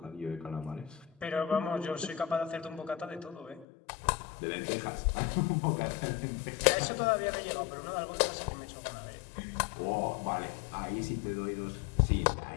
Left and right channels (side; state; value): right; drops out; at 3.7 s